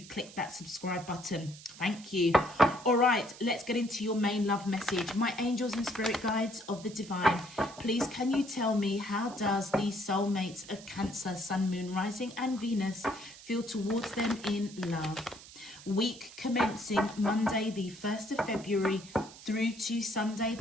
that subscribe button. Thank you. All right, let's get into your main love message. My angels and spirit guides of the divine, please can you tell me, how does these soulmates of Cancer, Sun, Moon, Rising and Venus feel towards them in love? Week commencing Monday the 1st of February through to Sunday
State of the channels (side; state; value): right; noise; hiss, 18 dB below the sound